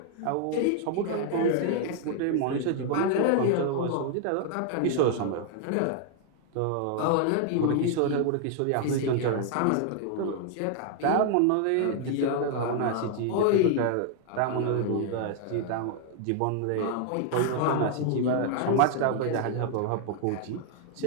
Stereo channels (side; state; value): both; different; correlation 0.00